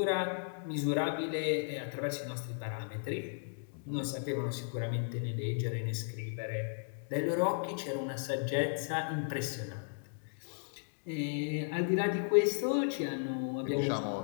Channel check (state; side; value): silent; right; digital silence